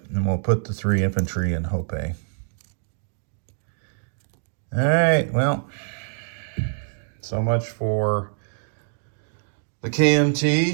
and we'll put the 3 infantry in Hope. All right, well, so much for the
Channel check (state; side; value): silent; left; digital silence